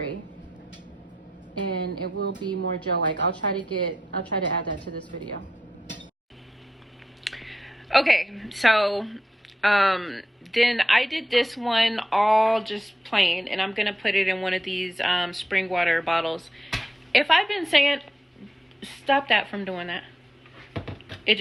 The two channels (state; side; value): normal; both; correlation 0.85